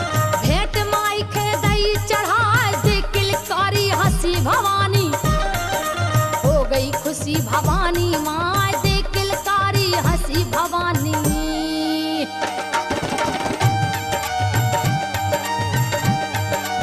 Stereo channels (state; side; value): identical; both; correlation 1.00